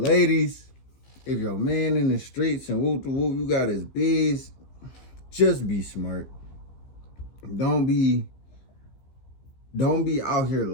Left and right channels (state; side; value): late; right; 15 ms